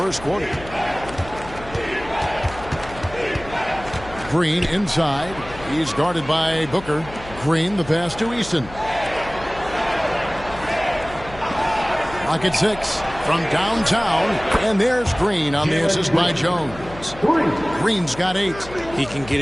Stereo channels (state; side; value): noise; left; hum, 16 dB below the sound